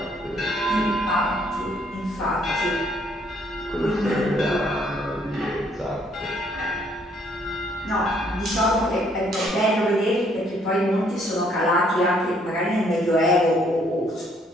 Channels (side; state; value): both; normal; correlation 0.66